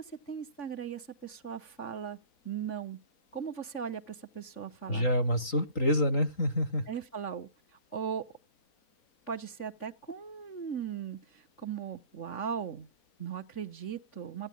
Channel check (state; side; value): late; right; 3.8 ms